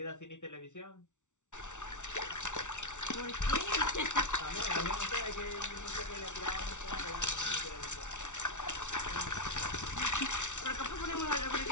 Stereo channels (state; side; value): late; right; 0.85 ms